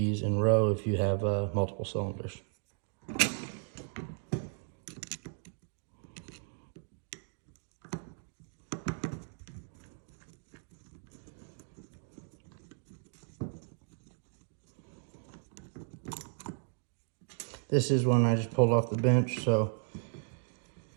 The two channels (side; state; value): left; silent; 54 dB below the other